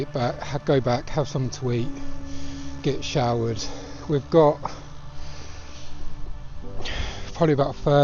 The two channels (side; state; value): both; identical; correlation 1.00